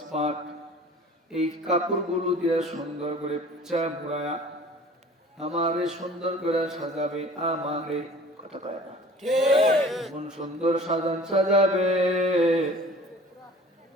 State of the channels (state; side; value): normal; both; correlation 0.46